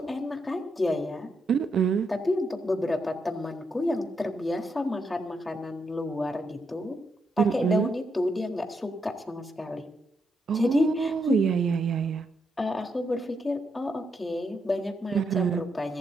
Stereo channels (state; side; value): normal; both; correlation 0.80